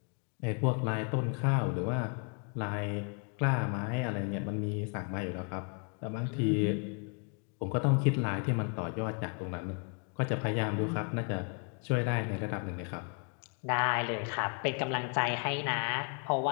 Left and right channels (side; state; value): right; quieter; 38.9 dB